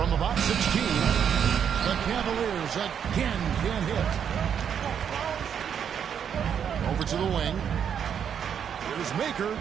about 16, the Cavaliers again can't hit. Over to the wing. Here's Maker.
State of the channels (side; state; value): left; quieter; 8.1 dB